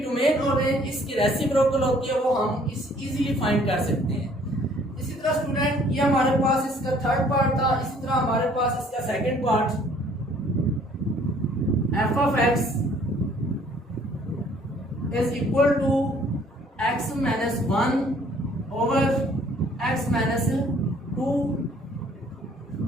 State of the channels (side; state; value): both; normal; correlation 0.59